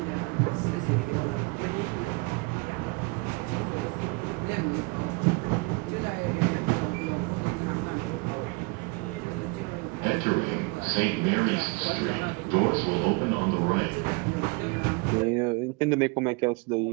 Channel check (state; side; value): quieter; left; 27.8 dB